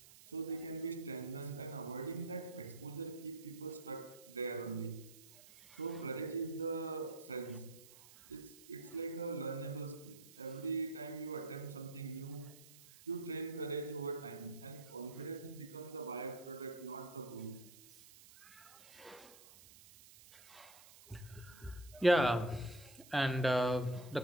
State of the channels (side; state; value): right; noise; hiss, 19 dB below the sound